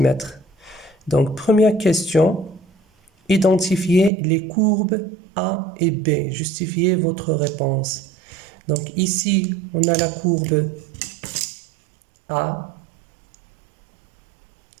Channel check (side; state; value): left; drops out; at 4.1 s